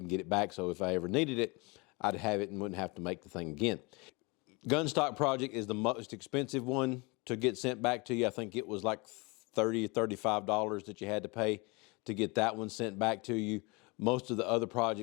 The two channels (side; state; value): right; quieter; 27.5 dB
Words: and get it back, so if I ever needed it, I'd have it and wouldn't have to make the thing again. Gun stock project is the most expensive one to get sent back to you. I think it was like $30 or $35 that you had to pay to get that one sent back to you. Most of the other